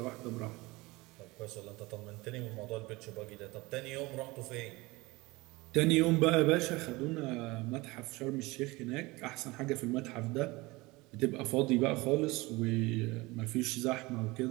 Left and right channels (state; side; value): quieter; left; 22.4 dB